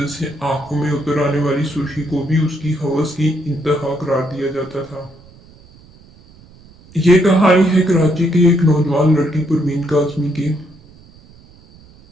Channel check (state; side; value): noise; right; rumble, 25 dB below the sound